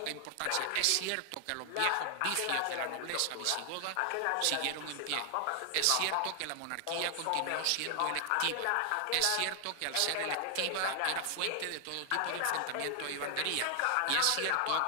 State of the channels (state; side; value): different; both; correlation 0.00